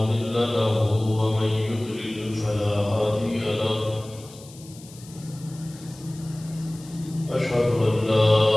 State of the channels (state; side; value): noise; left; hiss, 21 dB below the sound